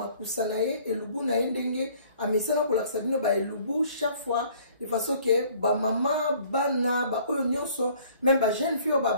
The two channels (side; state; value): both; inverted; correlation -0.56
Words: na ye elubu na ye ndenge amesana kolakisa bino ba elubu chaque fois de façon que ba mama bana ba oyo nyonso même ba jeune fille ba